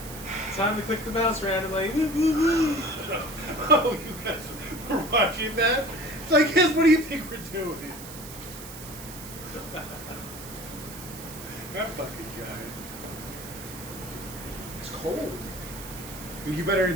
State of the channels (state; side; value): noise; right; hiss, 13 dB below the sound